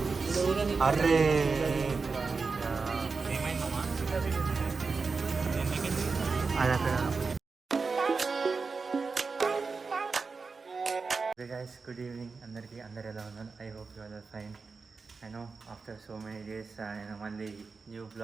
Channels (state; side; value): quieter; left; 4.5 dB